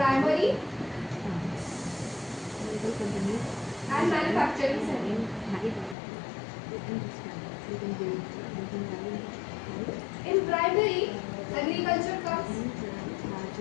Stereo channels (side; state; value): right; drops out; at 6.0 s